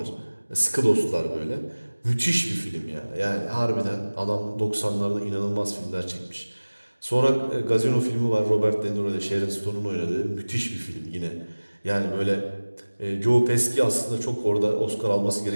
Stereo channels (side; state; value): both; inverted; correlation -1.00